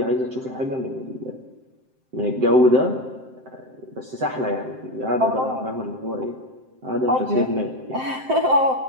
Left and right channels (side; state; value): left; late; 7.7 ms